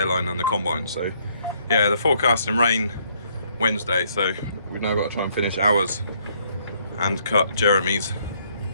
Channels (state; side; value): inverted; both; correlation -0.68